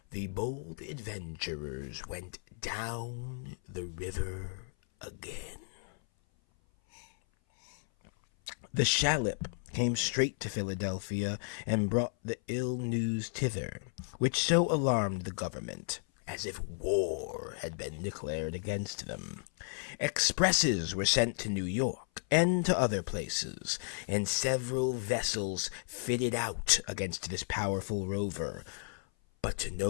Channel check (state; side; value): silent; right; 55 dB below the other